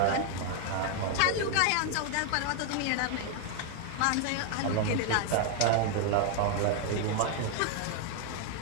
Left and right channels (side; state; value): both; different; correlation 0.00